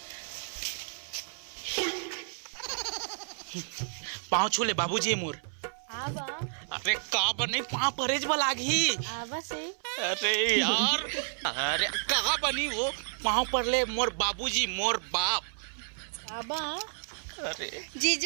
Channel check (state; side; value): silent; left; 57 dB below the other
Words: पाँव छूले बाबूजी मोर। आबा अरे का बनी पाँव परेज बलागी। आबा से अरे यार, अरे का बनी वो पाँव पर ले मोर बाबूजी, मोर बाप। आबा अरे